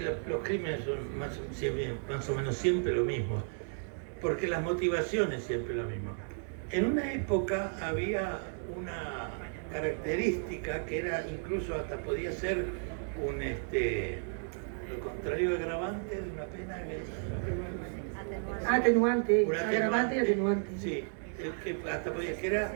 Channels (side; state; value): left; silent; 55 dB below the other